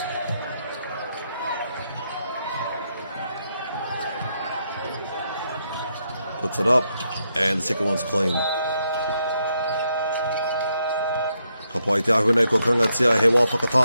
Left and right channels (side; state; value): both; inverted; correlation -0.79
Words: Puts it up, and the second one's clean. Ka pai te ahunei ko karangatia he wā